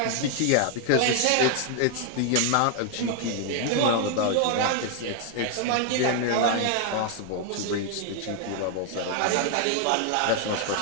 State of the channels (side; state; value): both; different; correlation 0.00